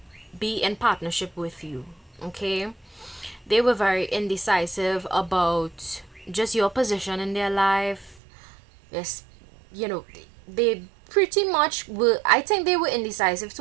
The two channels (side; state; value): left; drops out; at 8.2 s